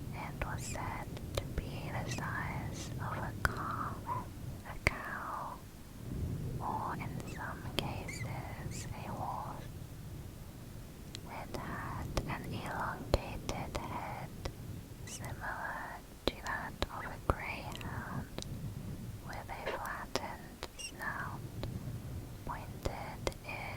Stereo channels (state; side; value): identical; both; correlation 1.00